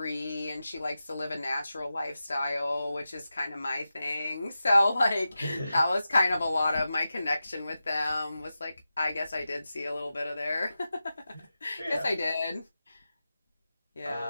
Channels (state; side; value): inverted; both; correlation -0.92